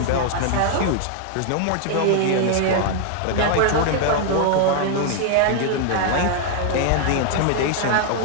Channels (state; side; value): different; both; correlation 0.00